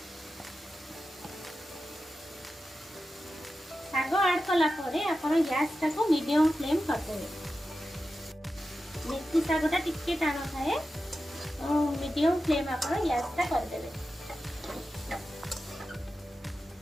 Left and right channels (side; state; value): both; normal; correlation 0.92